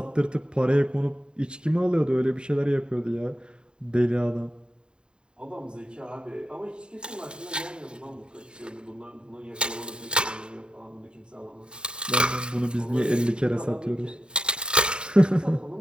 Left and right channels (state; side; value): late; left; 0.050 ms